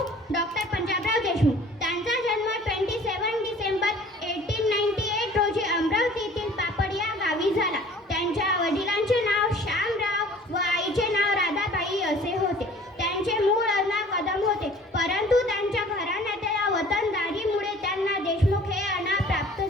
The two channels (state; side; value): normal; both; correlation 0.49